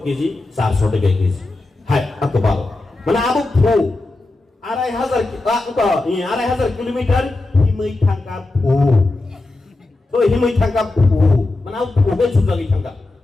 কেজি 400 টাকা কেজি হাই এত ভালো মানে আবু ফু 2500 কিলোমিটার হিমই থাকা ফু তো হিমই থাকা ফু মানে ফুবে সুজাগি থাকা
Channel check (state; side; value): quieter; right; 3.0 dB